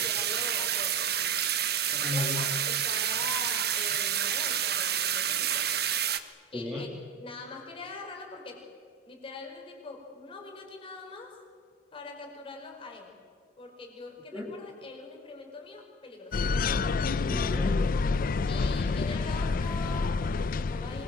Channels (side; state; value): both; normal; correlation 0.35